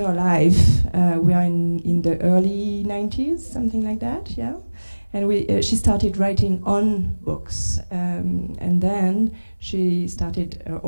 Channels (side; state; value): both; inverted; correlation -1.00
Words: life, we are in the early 90s, something like that, yeah? And she started writing on books, and then she started her